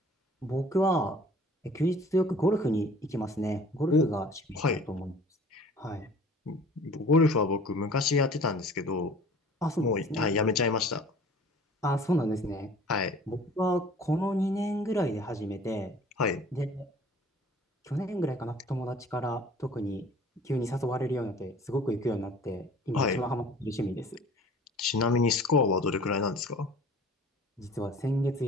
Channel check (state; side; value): normal; both; correlation 0.48